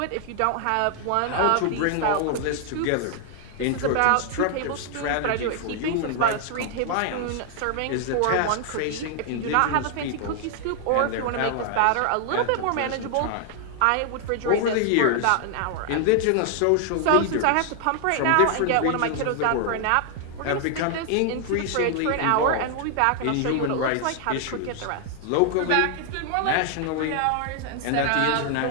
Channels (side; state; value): both; different; correlation 0.00